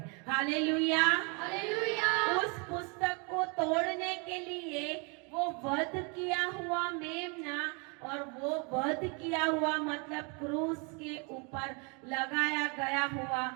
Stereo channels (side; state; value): left; quieter; 33.8 dB